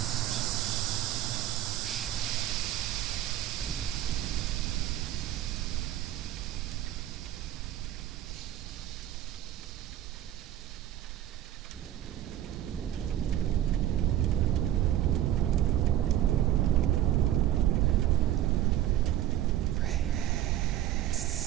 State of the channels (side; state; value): left; quieter; 12.3 dB